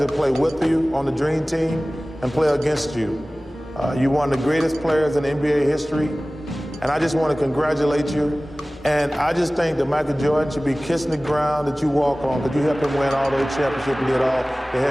to play with you on the Dream Team and play against you. You're one of the greatest players in NBA history, and I just want to congratulate you. And I just think that Michael Jordan should be kissing the ground that you walk on, because you helped him win all those championships and did all the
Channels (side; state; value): both; normal; correlation 0.98